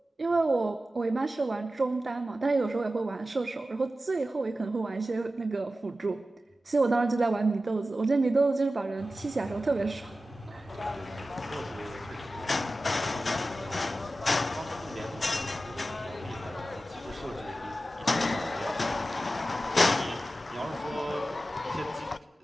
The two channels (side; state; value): both; normal; correlation 0.94